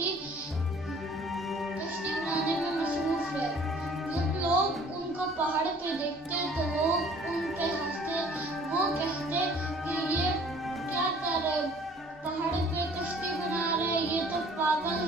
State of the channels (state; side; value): normal; both; correlation 0.53